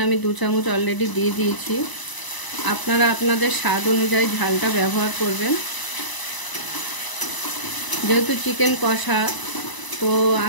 আমি 2 চামচ অলরেডি দিয়ে দিয়েছি। আপনারা আপনাদের স্বাদ অনুযায়ী ঝালটা ব্যবহার করবেন। যেহেতু চিকেন কষা, তো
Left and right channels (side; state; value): right; late; 1.0 ms